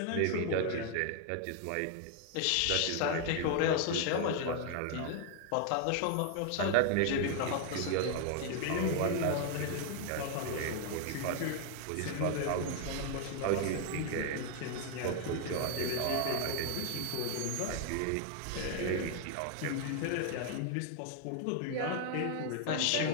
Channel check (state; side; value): different; both; correlation 0.00